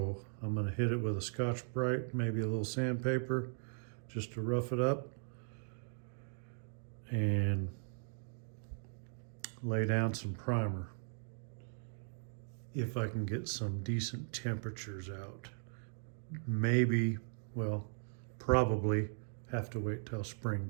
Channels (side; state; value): left; silent; digital silence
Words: I'm gonna hit it with a Scotch-Brite, maybe a little sandpaper, just to rough it up, and lay down some primer if I can get some decent temperatures out. Maybe, well, probably have to wait till